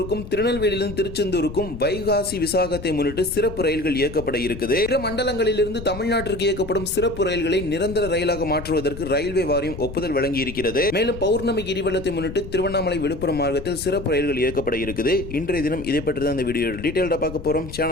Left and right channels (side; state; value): left; noise; rumble, 11 dB below the sound